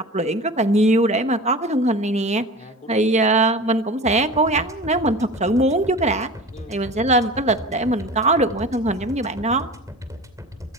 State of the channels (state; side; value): normal; both; correlation 0.35